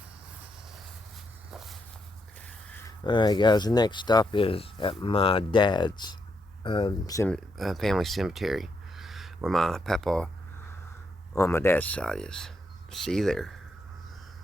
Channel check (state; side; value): normal; both; correlation 0.79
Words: Alright, guys, the next stop is at my dad's family cemetery, where my papa on my dad's side is. See you there.